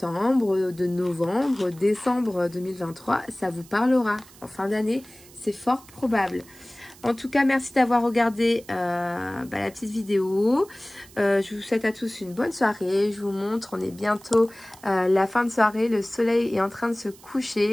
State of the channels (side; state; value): right; noise; hiss, 23 dB below the sound